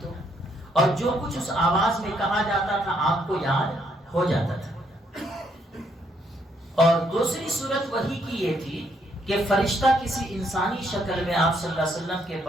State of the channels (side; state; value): both; normal; correlation 0.72